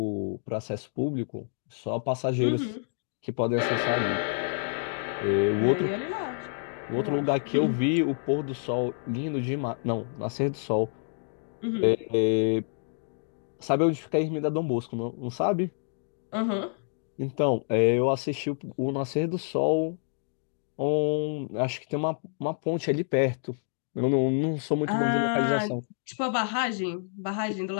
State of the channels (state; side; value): silent; right; digital silence